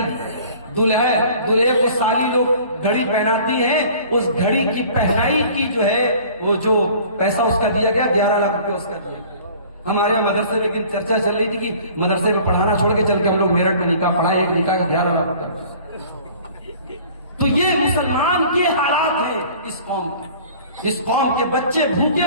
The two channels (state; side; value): inverted; both; correlation -0.48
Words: دلہے کو سالی لوگ گھڑی پہناتی ہیں، اس گھڑی کی پہنائی کی جو ہے وہ جو پیسہ اس کا دیا گیا 11 لاکھ روپے اس کا دیا گیا. ہمارے یہاں مدرسے میں لیکن چرچا چل رہی تھی کہ مدرسے میں پڑھانا چھوڑ کے چل کے ہم لوگ میرٹھ میں نکاح پڑھائے، ایک نکاح کا 11 لاکھ روپے. تو یہ مسلمان کے حالات ہیں اس قوم کے. اس قوم کے بچے